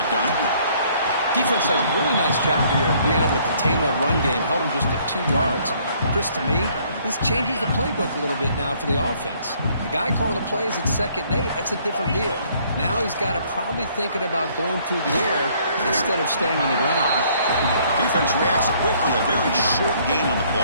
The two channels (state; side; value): inverted; both; correlation -0.62